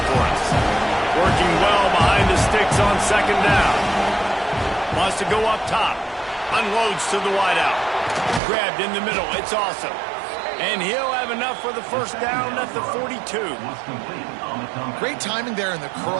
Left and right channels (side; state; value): left; drops out; at 8.4 s